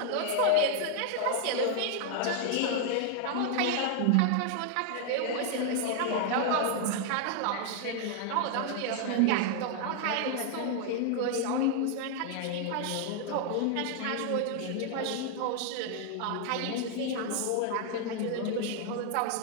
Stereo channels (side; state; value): both; different; correlation 0.00